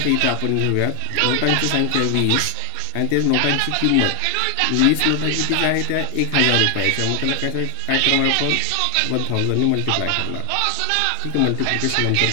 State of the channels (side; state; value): both; different; correlation 0.00